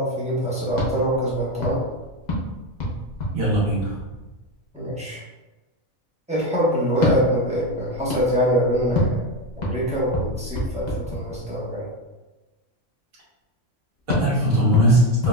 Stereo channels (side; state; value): both; normal; correlation 0.14